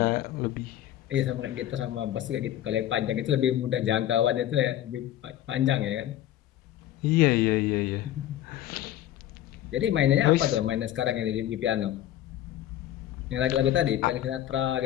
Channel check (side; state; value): right; quieter; 12.6 dB